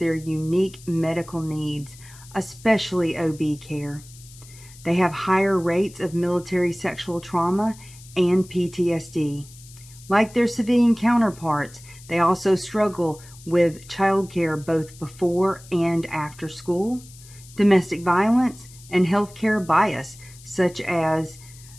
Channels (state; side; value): noise; left; hiss, 21 dB below the sound